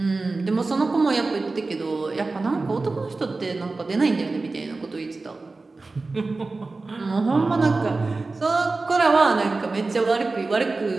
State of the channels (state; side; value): quieter; left; 3.6 dB